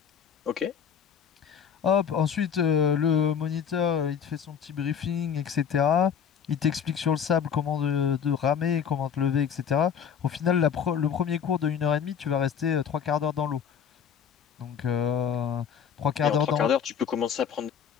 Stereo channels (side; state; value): right; quieter; 7.6 dB